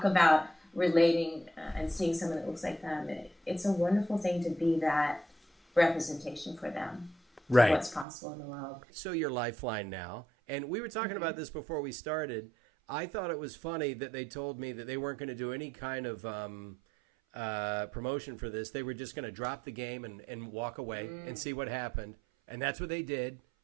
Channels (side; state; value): left; drops out; at 8.1 s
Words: about relating and seeing someone that looks like them, it's a wonderful thing to be that representation for them. Right. What's possible in the world. So you're Lifeline now, and we were talking about this before we started. I thought it was funny that they told me that they weren't going to do any kind of promotion for this. They were just going to drop the game and walk away and see what happened, and that's what they did,